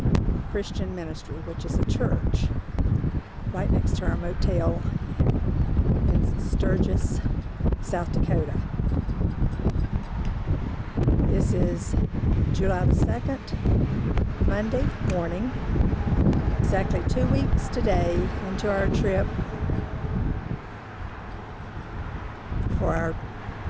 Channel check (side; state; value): both; identical; correlation 1.00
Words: Christian Ministry, which is a church right next to our motel in Sturgis, South Dakota. This is July the 2nd, Monday morning, exactly 2 weeks today into our trip for our